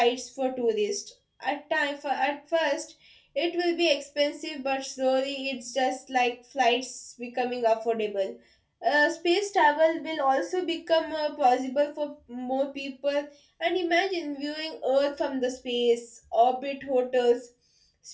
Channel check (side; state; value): both; identical; correlation 1.00